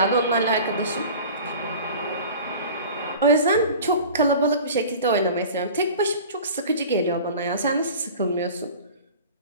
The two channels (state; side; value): inverted; both; correlation -0.39